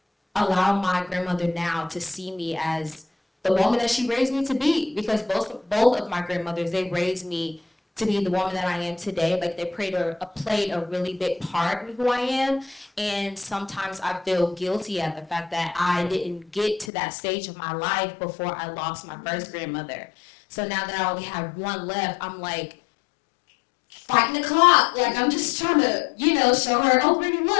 allow my grandmother now to see me as the woman that she raised me to be, because both of my grandmothers, they raised me to be the woman that I am today. Like, they played a really big part in who I am. And sometimes I feel guilty at the fact that I didn't get to that stage of my life before I lost my first grandmother. So now that I only have one left, I'm like fighting the clock. Like, I'm just trying to, show her, oh, Brittany,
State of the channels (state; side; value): drops out; right; at 16.9 s